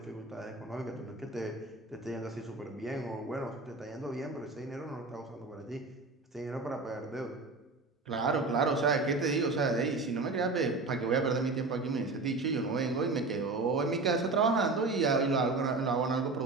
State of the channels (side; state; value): left; quieter; 3.6 dB